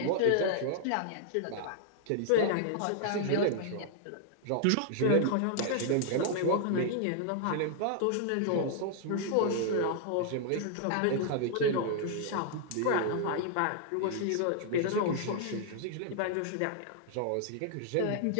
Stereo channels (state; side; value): different; both; correlation -0.01